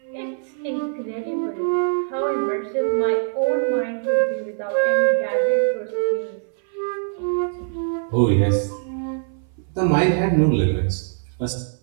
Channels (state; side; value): silent; left; 59 dB below the other